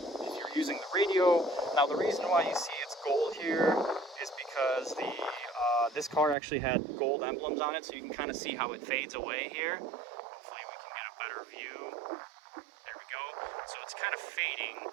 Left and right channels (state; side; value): drops out; left; at 6.4 s